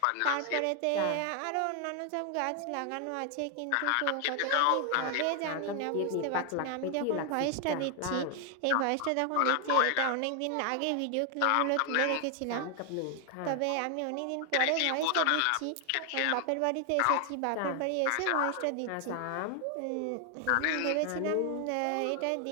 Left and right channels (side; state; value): both; different; correlation 0.00